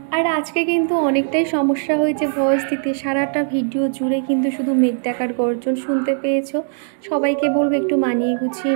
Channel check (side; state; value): left; silent; digital silence